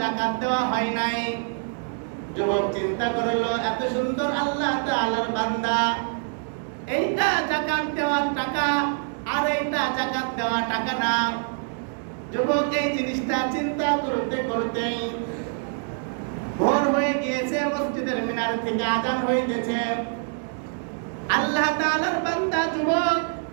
জাকাত দেওয়া হয় নাই। যুবক চিন্তা করলো, এত সুন্দর আল্লাহ তাআলার বান্দা, এইটা জাকাত দেওয়ার টাকা আর এইটা জাকাত দেওয়া টাকা না। যুবক এই জিনিসটা চিন্তা করতে করতেই ভোর হয়ে গিয়েছে। মসজিদের মিনার থেকে আযান হইতেছে। আল্লাহ তাআলার বান্দা যুবক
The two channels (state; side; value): silent; left; 58 dB below the other